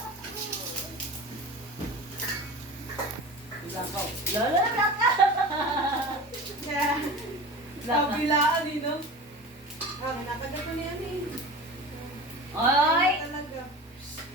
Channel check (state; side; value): normal; both; correlation 0.34